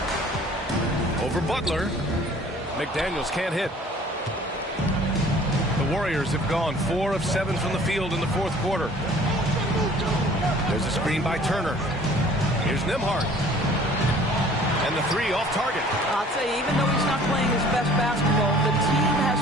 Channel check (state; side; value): normal; both; correlation 0.52